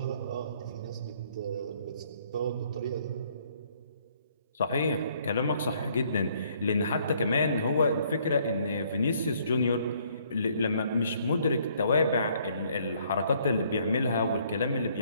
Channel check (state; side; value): inverted; both; correlation -0.65